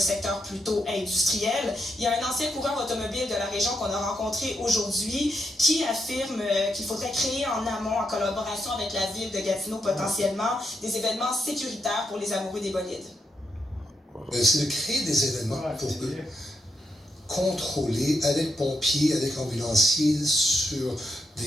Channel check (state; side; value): normal; both; correlation 0.82